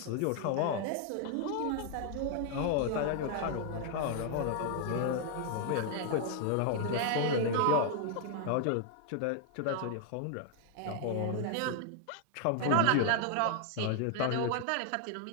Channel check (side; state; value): both; different; correlation 0.00